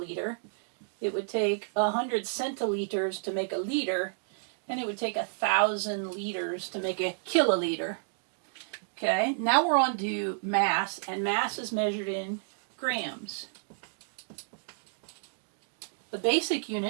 It would take 100 centiliters to make a liter, and it would take 1,000 liters to make a kiloliter. Okay, now we're on to mass, and mass is measured in grams. The basic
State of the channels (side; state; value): left; silent; digital silence